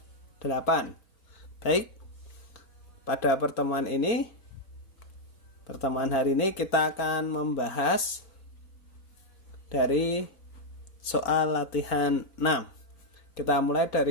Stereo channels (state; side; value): late; right; 4.2 ms